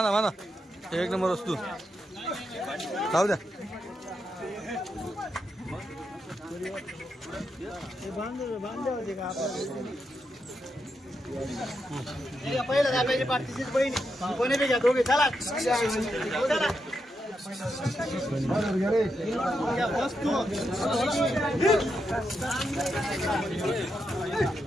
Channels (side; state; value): both; normal; correlation 0.84